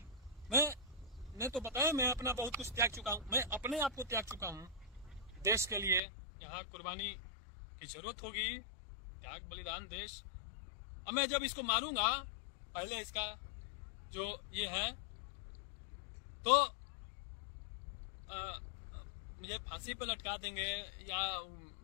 मैं तो बताया, मैं अपना बहुत कुछ त्याग चुका हूं, मैं अपने आप को त्याग चुका हूं देश के लिए। यहाँ कुर्बानी की जरूरत होगी, त्याग, बलिदान, देश। अब मैं जब इसको मारूंगा, पहले इसका जो ये है, तो मुझे फांसी पर लटका देंगे या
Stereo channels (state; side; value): drops out; right; at 6.0 s